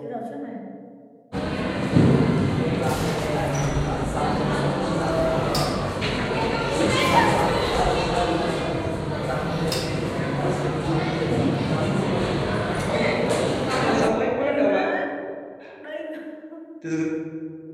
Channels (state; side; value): identical; both; correlation 1.00